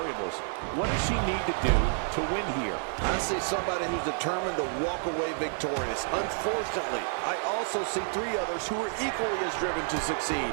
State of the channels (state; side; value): silent; left; 58 dB below the other